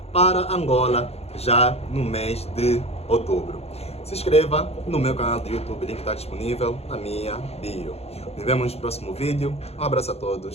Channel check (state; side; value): late; right; 0.30 ms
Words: para Angola já no mês de outubro. Se inscreva no meu canal do YouTube, o link está disponível na minha bio. Nos vemos no próximo vídeo, um abraço a